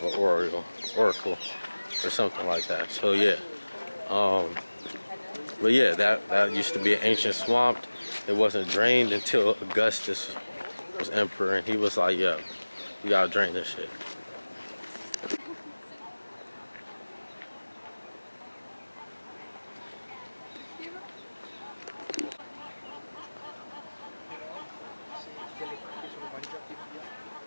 an oracle or something like that. So yeah, but yeah, that used to be an ancient swamp. It wasn't drained until Augustus was emperor, and he was like, "Yo, you gotta drain this shit."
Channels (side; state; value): both; inverted; correlation -1.00